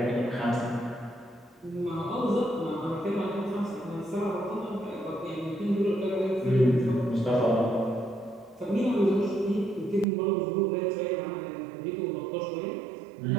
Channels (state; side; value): drops out; left; at 10.1 s